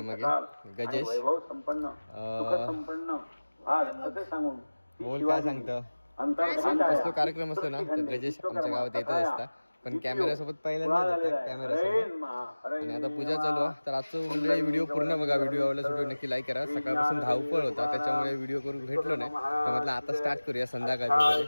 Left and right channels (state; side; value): inverted; both; correlation -1.00